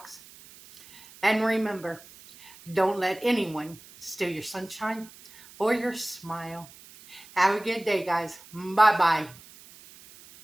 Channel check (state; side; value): noise; right; hiss, 21 dB below the sound